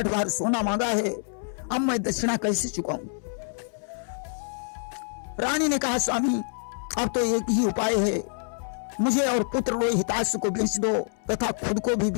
बार सोना मांगा है। अब मैं दक्षिणा कैसे चुकाऊं? रानी ने कहा, स्वामी, अब तो एक ही उपाय है, मुझे और पुत्र रोहिताश को बेच दो तथा खुद को भी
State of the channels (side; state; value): right; silent; 60 dB below the other